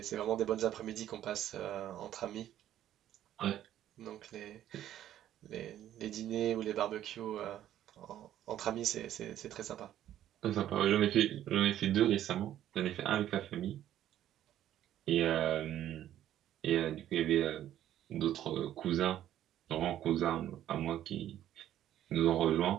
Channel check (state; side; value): quieter; left; 11.9 dB